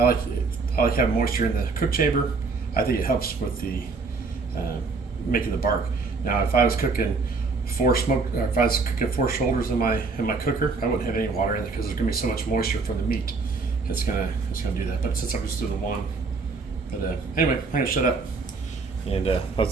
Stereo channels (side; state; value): left; quieter; 4.2 dB